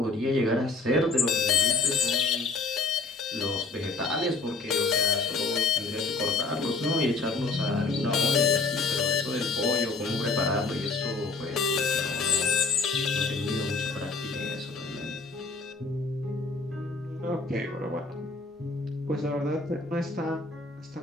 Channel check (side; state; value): right; quieter; 3.8 dB